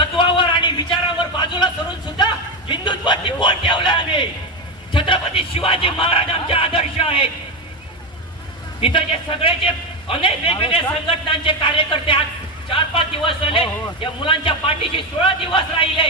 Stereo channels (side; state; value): both; normal; correlation 0.12